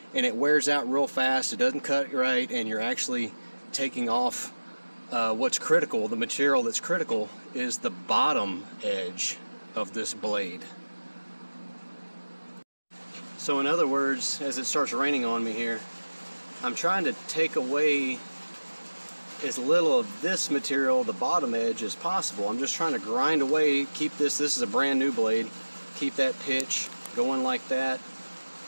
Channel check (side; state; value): both; inverted; correlation -1.00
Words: and it wears out real fast. It doesn't cut right, and you're actually taking off what's critical. The material that's critical is the bottom edge of this blade. So in other words, as it starts raining on me here, I'm trying to take away as little of this material, the bottom edge, as possible. I'm just trying to grind away, keep this is a brand new blade, keep that pitch going like that,